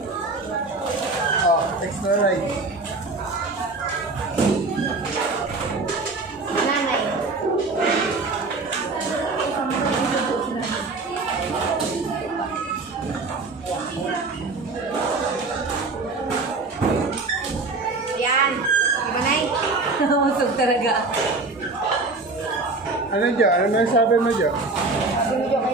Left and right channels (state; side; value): quieter; left; 3.5 dB